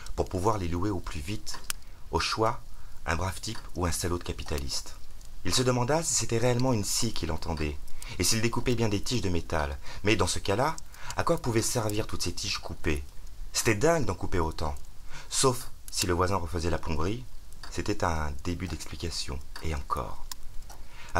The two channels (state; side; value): identical; both; correlation 1.00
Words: pour pouvoir les louer au plus vite. Au choix, un brave type ou un salaud de capitaliste. Il se demanda si c'était réellement une scie qu'il entendait, et s'il découpait bien des tiges de métal. Mais dans ce cas-là, à quoi pouvaient servir toutes ces tiges coupées? C'était dingue d'en couper autant. Sauf si le voisin refaisait la plomberie, c'était un début d'explication, et encore.